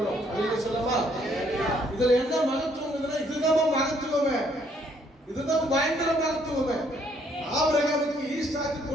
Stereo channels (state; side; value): normal; both; correlation 0.67